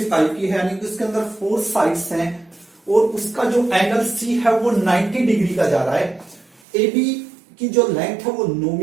टाइप की है, यानी कि उसके अंदर 4 साइड्स हैं और उसका जो एंगल C है वो 90 डिग्री का जा रहा है। AB की जो लेंथ है वो 9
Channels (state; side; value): drops out; left; at 6.6 s